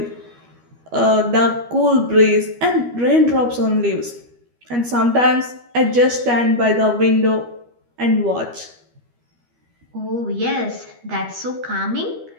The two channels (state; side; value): late; left; 12 ms